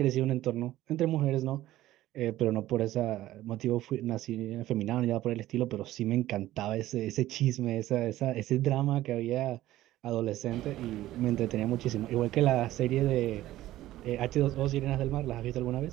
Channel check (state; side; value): quieter; left; 15.0 dB